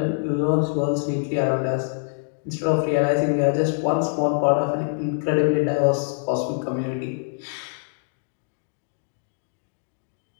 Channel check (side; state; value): right; silent; digital silence